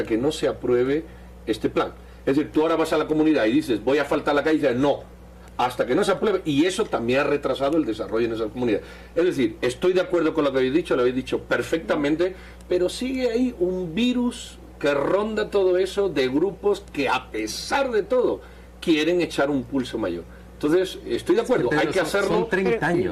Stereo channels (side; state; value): both; identical; correlation 1.00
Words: que no se apruebe este plan. Es decir, tú ahora vas a la comunidad y dices, voy a faltar la calle, y dices, no, hasta que no se apruebe, y eso también ha retrasado el desarrollo en esas comunidades. Es decir, estoy de acuerdo con lo que habéis dicho, lo habéis dicho perfectamente, pero sigue ahí un virus que ronda todo eso de grupos que a pesar de todo quieren echar un pulso mayor. Entonces, estoy de acuerdo, hay que hacerlo. Son 30